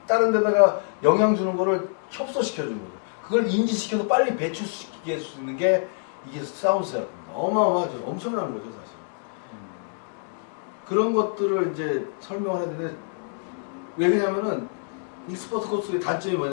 다른 데다가 영향 주는 거를 협소시켜 주는 거죠. 그걸 인지시켜서 빨리 배출시킬 수 있는 게 이게 사운드 세라피입니다. 어마어마하죠. 엄청난 거죠, 사실. 그런 것들을 이제 설명을 해야 되는데, 왜 그러냐면은, 익스퍼트 코스의 단점이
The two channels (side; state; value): right; silent; 61 dB below the other